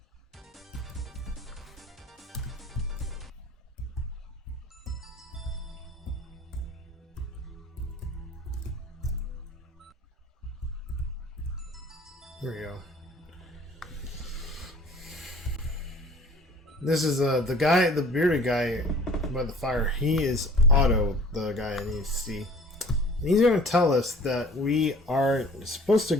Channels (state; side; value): normal; both; correlation 0.48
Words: Here we go. This is the guy, the bearded guy by the fire. He is Otto, the guy I need to see. And he's going to tell us that we are supposed to